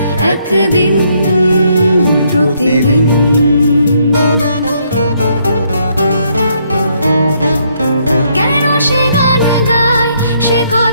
একদিন প্রতিদিন। কেন সে গান গায় সে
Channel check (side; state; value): both; inverted; correlation -0.71